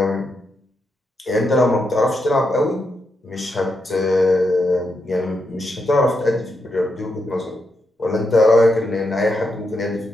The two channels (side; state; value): both; normal; correlation 0.83